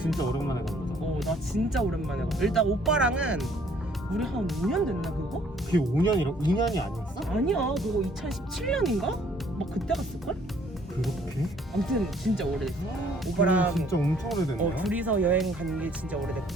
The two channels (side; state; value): both; normal; correlation 0.61